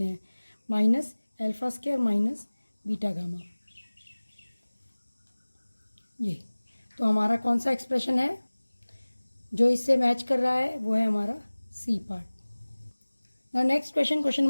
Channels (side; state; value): both; inverted; correlation -1.00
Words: हैं। Minus alpha square minus beta gamma, ये तो हमारा कौन सा एक्सप्रेशन है जो इससे मैच कर रहा है, वो है हमारा C part. Now next question, question